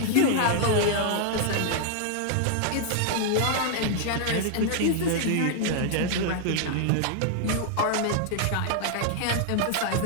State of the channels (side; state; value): both; different; correlation 0.00